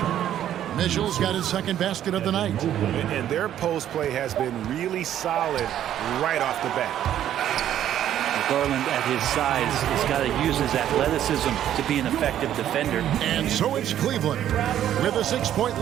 Mitchell's got his second basket of the night. And their post play has been really solid right off the bat. Garland at his size has got to use his athleticism to be an effective defender. And so it's Cleveland with a 6-point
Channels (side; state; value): left; quieter; 11.1 dB